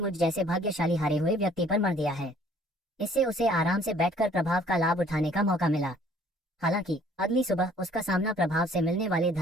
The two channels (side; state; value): both; normal; correlation 0.58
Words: जैसे भाग्यशाली हारे हुए व्यक्ति पर मर दिया है। इससे उसे आराम से बैठकर प्रभाव का लाभ उठाने का मौका मिला। हालांकि अगली सुबह उसका सामना प्रभाव से मिलने वाले